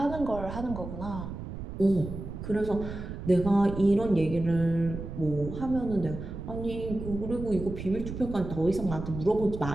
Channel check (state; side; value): noise; right; rumble, 8 dB below the sound